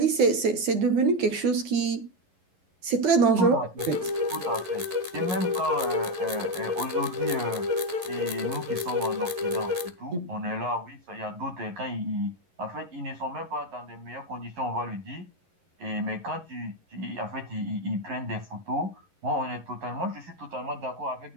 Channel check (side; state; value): left; late; 11 ms